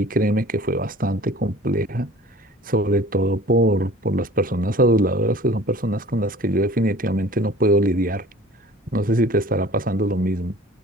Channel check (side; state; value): both; normal; correlation 0.46